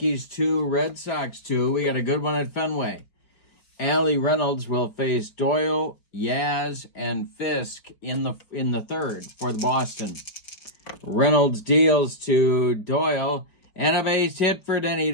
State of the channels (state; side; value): late; right; 5.0 ms